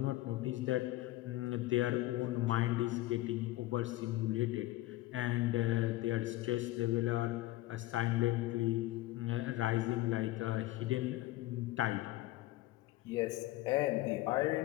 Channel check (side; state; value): right; quieter; 17.2 dB